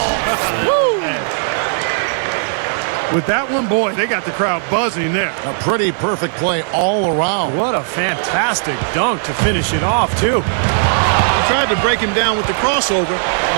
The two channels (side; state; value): left; silent; digital silence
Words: With that one, boy, they got the crowd buzzing there. A pretty perfect play all around. What a fantastic dunk to finish it off, too. He tried to break him down with the crossover,